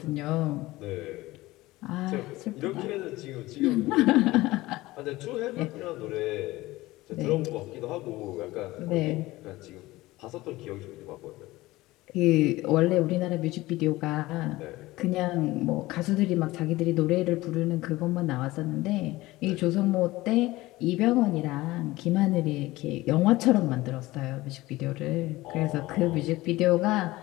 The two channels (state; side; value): quieter; right; 18.8 dB